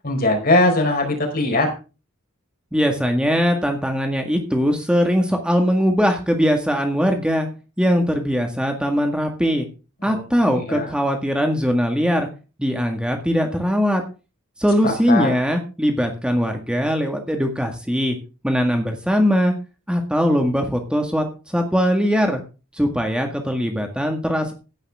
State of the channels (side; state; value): both; normal; correlation 0.76